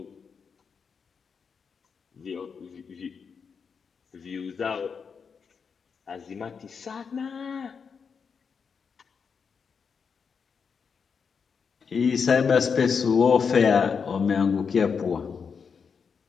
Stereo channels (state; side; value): quieter; right; 6.0 dB